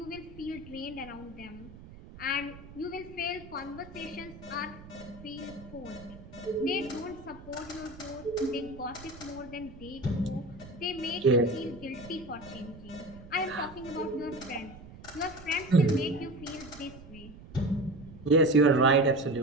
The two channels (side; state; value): right; noise; rumble, 17 dB below the sound